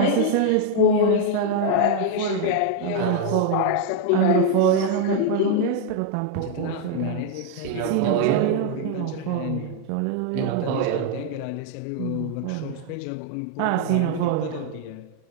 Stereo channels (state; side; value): different; both; correlation 0.00